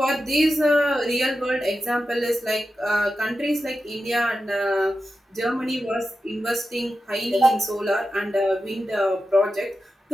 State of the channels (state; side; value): normal; both; correlation 0.91